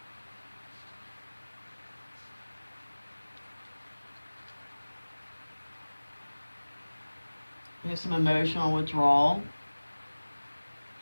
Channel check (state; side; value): inverted; both; correlation -1.00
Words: We have some emotional withdrawal.